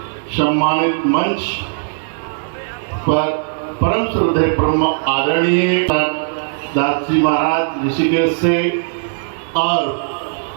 सम्मानित मंच पर परम श्रद्धेय परम आदरणीय दास जी महाराज ऋषिकेश से और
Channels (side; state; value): left; silent; 59 dB below the other